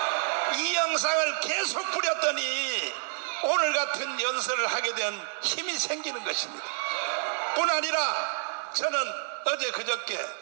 이 영상을 계속 뿌렸더니 오늘 같은 연설을 하게 된 힘이 생기는 것입니다. 뿐 아니라 저는 어제 그저께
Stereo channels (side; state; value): left; silent; 59 dB below the other